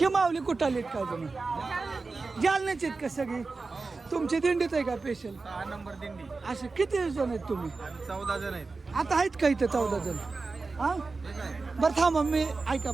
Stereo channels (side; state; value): left; quieter; 4.0 dB